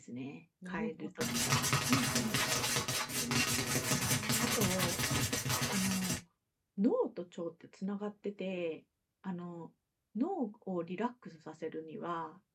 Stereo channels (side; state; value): both; identical; correlation 1.00